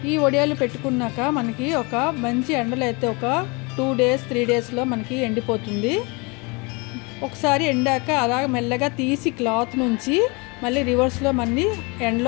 ఈ వడియాలు పెట్టుకున్నాక మనకి ఒక మంచి ఎండలో అయితే ఒక 2 days 3 daysలో మనకి ఎండిపోతుంది। ఒకసారి ఎండాక అలా మెల్లగా తీసి క్లాత్ నుంచి మళ్ళీ రివర్స్లో మళ్ళీ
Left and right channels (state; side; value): quieter; right; 29.1 dB